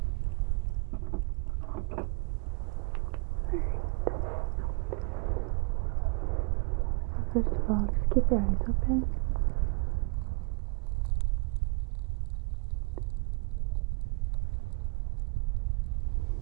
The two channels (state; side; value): quieter; left; 32.0 dB